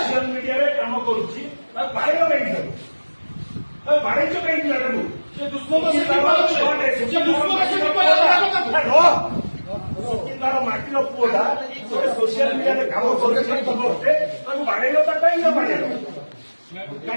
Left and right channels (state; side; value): inverted; both; correlation -1.00